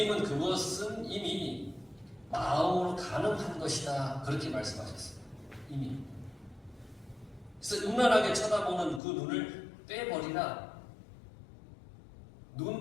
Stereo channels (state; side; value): drops out; right; at 9.0 s